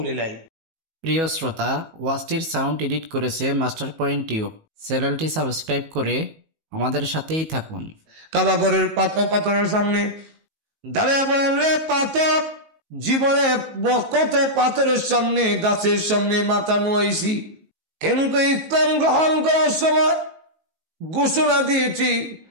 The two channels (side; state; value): left; late; 19 ms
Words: লাই। প্রিয় শ্রোতা, ওয়াজটির সাউন্ড এডিট করেছে মাস্টার পয়েন্ট টিউব। চ্যানেলটি সাবস্ক্রাইব করে আমাদের সাথেই থাকুন। কাবাগরের পাথরের সামনে দাঁড়িয়ে বলেন রে পাথর, জীবনে কত পাথরের সামনে গাছের সামনে মাথা নোয়াইছি, কিন্তু ইসলাম গ্রহণ করার সময় ঘোষণা দিয়েছি